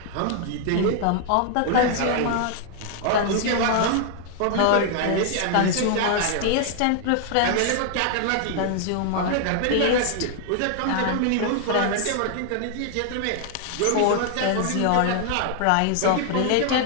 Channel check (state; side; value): different; both; correlation 0.00